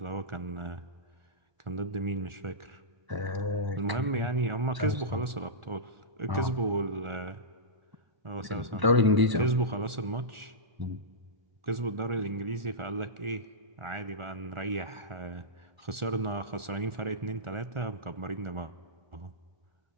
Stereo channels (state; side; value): late; left; 1.4 ms